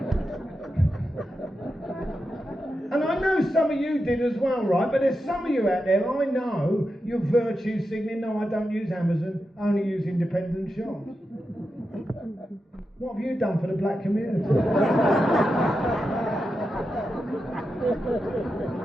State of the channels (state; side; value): normal; both; correlation 0.89